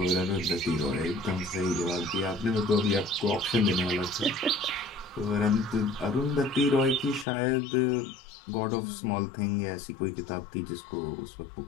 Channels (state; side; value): drops out; right; at 7.2 s